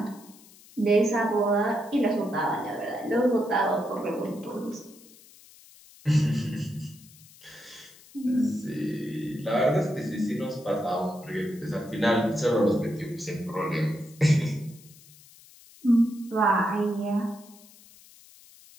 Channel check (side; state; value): left; noise; hiss, 23 dB below the sound